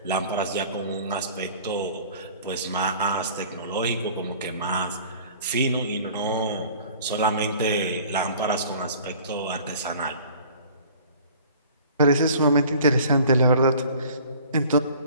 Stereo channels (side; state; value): both; inverted; correlation -0.48